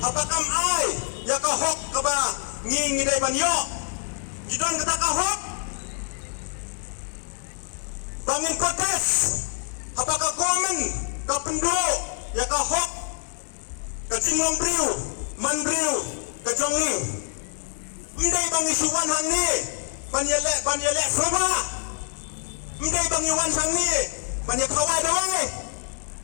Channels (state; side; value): silent; right; digital silence